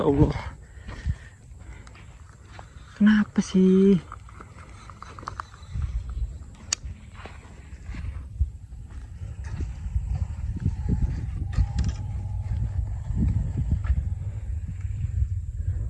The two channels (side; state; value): both; identical; correlation 1.00